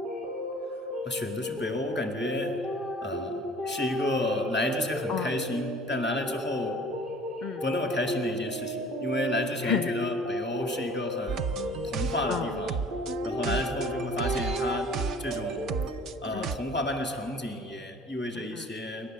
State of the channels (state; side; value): normal; both; correlation 0.48